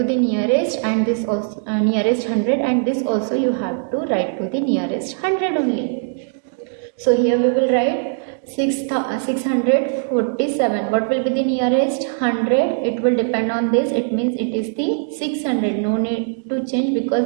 the nearest, and this also nearest 100, and this also you have to write to the nearest 100 only. So here we will write 647. What will be the nearest? 100. It will depend on this. It means it is the 600. No need to change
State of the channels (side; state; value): left; silent; digital silence